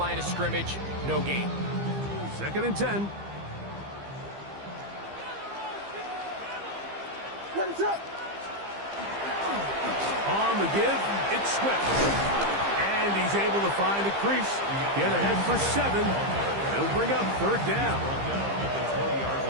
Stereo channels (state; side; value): late; left; 15 ms